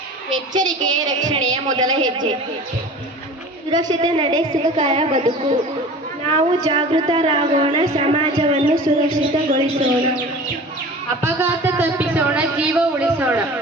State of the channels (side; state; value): both; normal; correlation 0.39